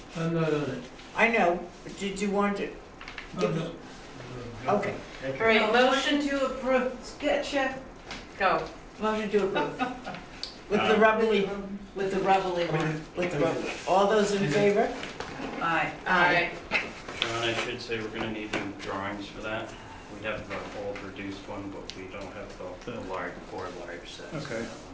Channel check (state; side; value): identical; both; correlation 1.00